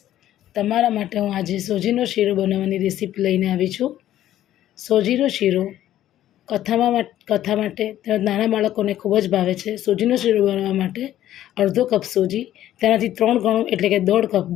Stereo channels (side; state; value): right; quieter; 12.7 dB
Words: તમારા માટે હું આજે સોજીનો શીરો બનાવવાની રેસીપી લઈને આવી છું. સોજીનો શીરો કથા માટે તેમજ નાના બાળકોને ખૂબ જ ભાવે છે. સોજીનો શીરો બનાવવા માટે અડધો કપ સોજી, તેનાથી 3 ગણું એટલે કે 1.5 કપ